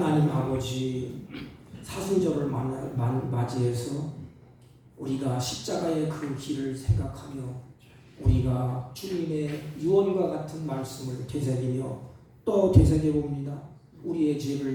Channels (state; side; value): identical; both; correlation 1.00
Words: 아버지, 사순절을 맞이해서 우리가 십자가의 그 길을 생각하며 우리가 주님의 유언과 같은 말씀을 되새기며 또 되새겨봅니다. 우리의